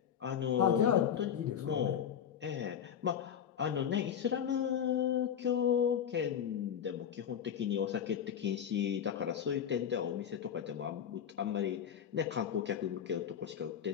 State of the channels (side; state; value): right; quieter; 8.7 dB